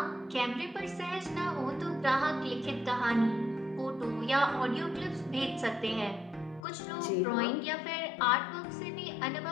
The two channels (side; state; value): right; drops out; at 6.7 s